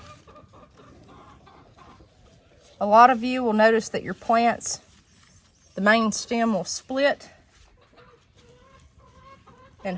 A lot of you will notice that your plants, the main stem will split in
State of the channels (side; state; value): both; identical; correlation 1.00